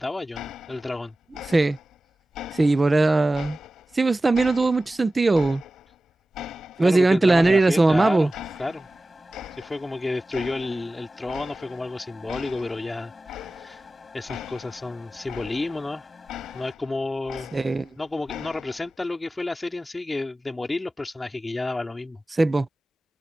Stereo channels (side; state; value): both; normal; correlation 0.96